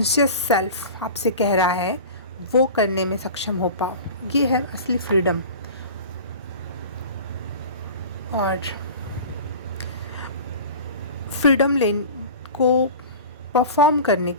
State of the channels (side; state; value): both; inverted; correlation -0.36